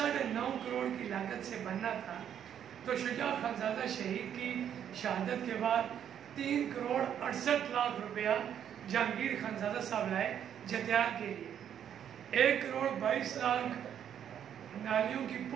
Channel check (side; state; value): left; quieter; 9.3 dB